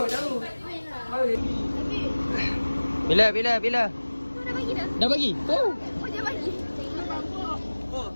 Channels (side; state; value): both; inverted; correlation -1.00